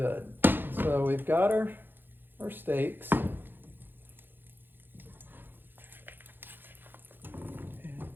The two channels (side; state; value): left; late; 0.097 ms